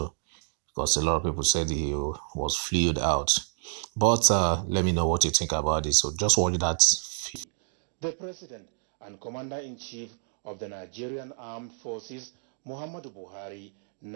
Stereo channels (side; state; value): left; silent; digital silence